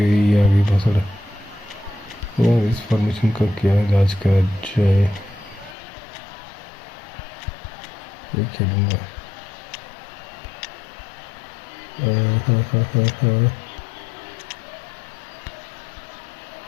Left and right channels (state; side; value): drops out; right; at 5.8 s